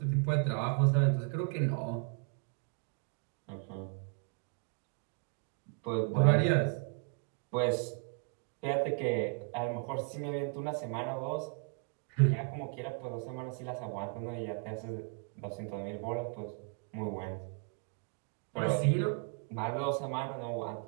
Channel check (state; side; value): quieter; left; 39.9 dB